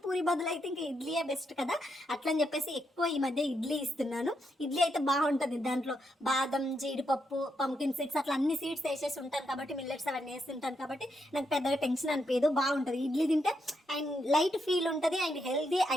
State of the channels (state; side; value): normal; both; correlation 0.80